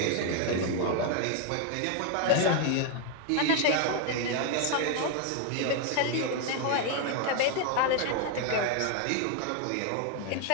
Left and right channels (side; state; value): both; different; correlation 0.00